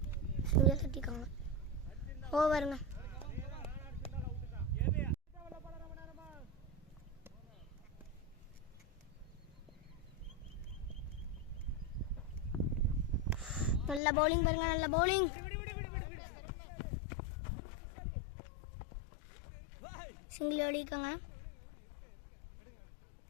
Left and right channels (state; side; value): drops out; right; at 14.0 s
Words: சிங்கிள் தட்டிக்காங்க. ஓவருங்க. நல்ல பவுலிங் பாருங்க, நல்ல bowling. Single ஓடிக்காங்க.